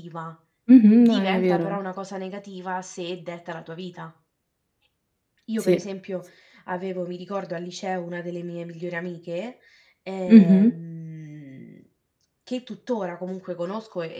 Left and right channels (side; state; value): both; identical; correlation 1.00